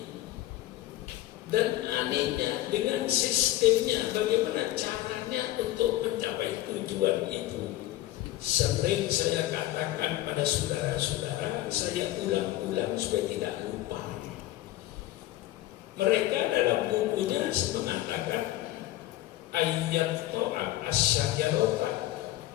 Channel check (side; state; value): right; quieter; 15.2 dB